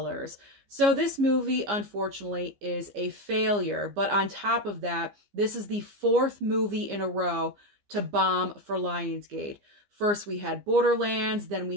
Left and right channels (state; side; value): late; left; 15 ms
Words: So this movie, unfortunately, is a failure. But on top of that, this is the 4th movie in a row to bomb for Lionsgate. First, we had Borderlands, then